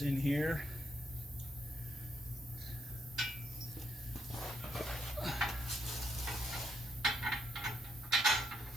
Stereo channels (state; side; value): normal; both; correlation 0.77